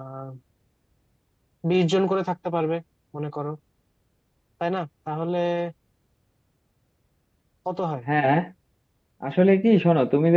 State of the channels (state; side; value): identical; both; correlation 1.00